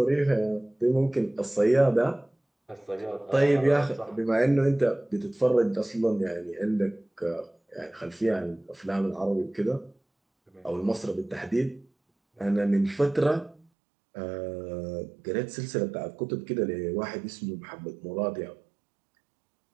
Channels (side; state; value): left; drops out; at 13.7 s